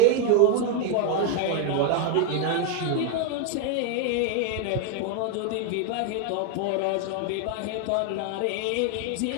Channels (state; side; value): different; both; correlation 0.01